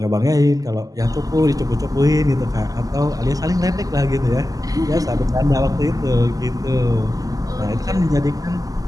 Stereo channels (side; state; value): left; late; 0.17 ms